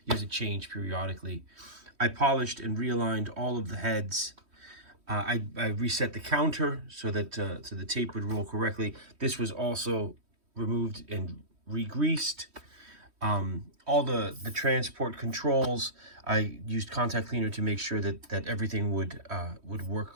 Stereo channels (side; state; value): left; late; 3.1 ms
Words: you have to change periodically. I polished and realigned all of the heads. I reset the counter so that so the tape would roll correctly. This was also removed and re-greased. All the transport controls, I used contact cleaner to make sure that everything would work